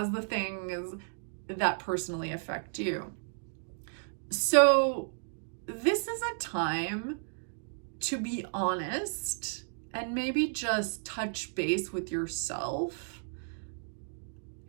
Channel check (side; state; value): left; silent; digital silence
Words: the things that personally affect you. So this is a time to be honest and maybe just touch base with yourself